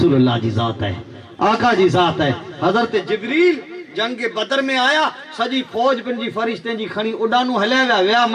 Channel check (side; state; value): both; identical; correlation 1.00